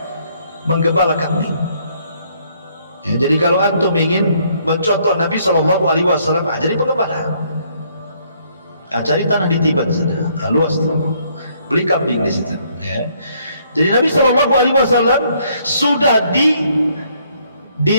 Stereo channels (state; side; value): inverted; both; correlation -0.67